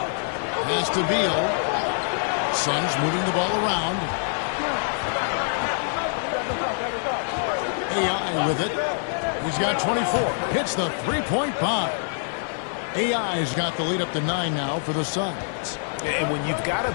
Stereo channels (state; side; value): silent; right; digital silence